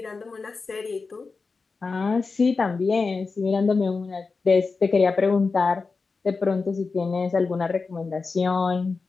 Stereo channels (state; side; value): quieter; right; 4.4 dB